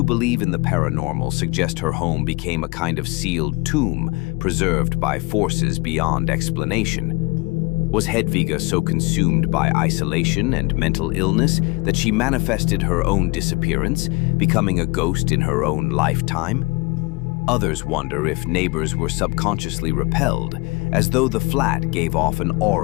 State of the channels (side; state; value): right; quieter; 25.9 dB